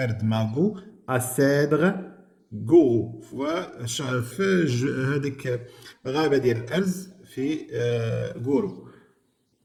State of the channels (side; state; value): both; identical; correlation 1.00